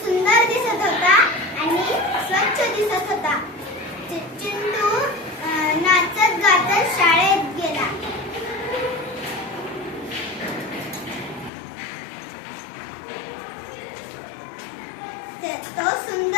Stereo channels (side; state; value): right; drops out; at 11.5 s